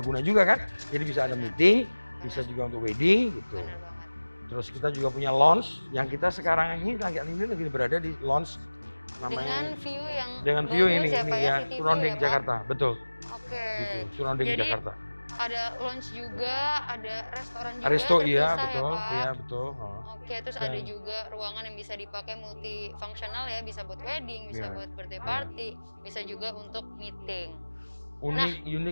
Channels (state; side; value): inverted; both; correlation -1.00